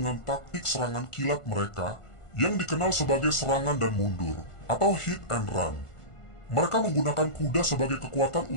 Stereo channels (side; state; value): right; late; 1.5 ms